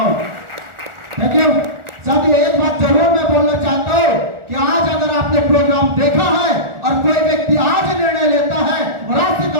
Thank you. साथियों एक बात जरूर मैं बोलना चाहता हूँ कि आज अगर आपने प्रोग्राम देखा है और कोई व्यक्ति आज निर्णय लेता है और आज से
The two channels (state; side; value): late; left; 1.4 ms